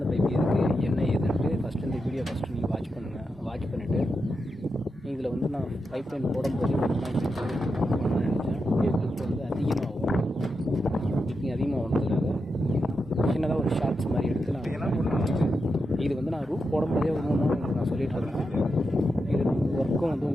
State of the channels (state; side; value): normal; both; correlation 0.87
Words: பைப் இருக்குது என்ன ஏதுன்ட்டு ஃபஸ்ட்டு இந்த வீடியோ நீங்கள் வாட்ச் பண்ணுங்கள். வாட்ச் பண்ணிவிட்டு இதில் வந்து நான் பைப் லைன் போடும்போது பண்ணணும்னு நினச்சேன். வீடியோக்கு வந்து அதிகமாகும். நீங்கள் அதிகமாக வந்ததுக்காக சின்னதாக ஒரு ஷார்ட்ஸ் மாதிரி எடுத்து இது வந்து நான் ரூஃப் போடும்போதே உங்களுக்கு நான் சொல்லிகிட்டு இருந்தேன். இது ஒர்க்கும் வந்து